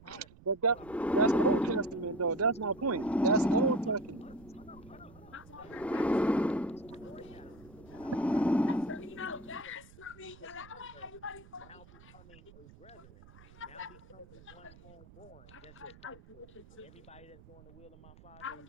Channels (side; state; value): right; noise; rumble, 21 dB below the sound